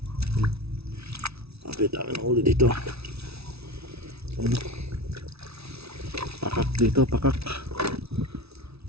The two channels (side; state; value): left; late; 0.79 ms